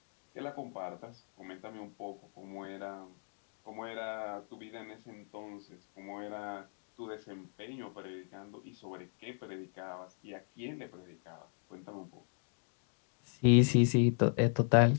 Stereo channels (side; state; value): right; silent; 53 dB below the other